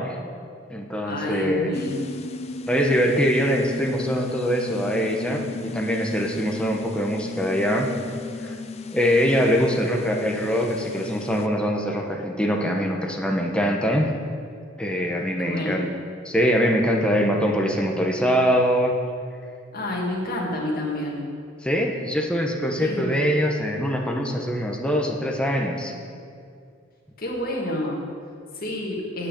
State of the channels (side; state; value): both; normal; correlation 0.63